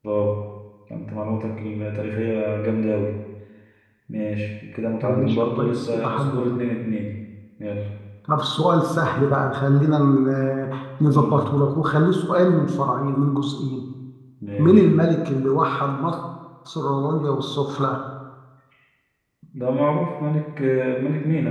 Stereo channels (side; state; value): both; identical; correlation 1.00